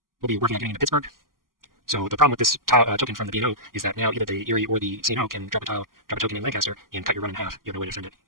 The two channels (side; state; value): left; late; 0.91 ms